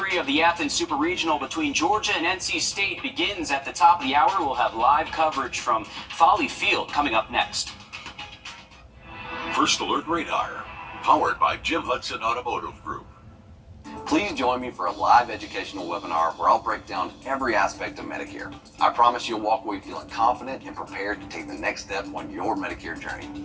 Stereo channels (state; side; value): identical; both; correlation 1.00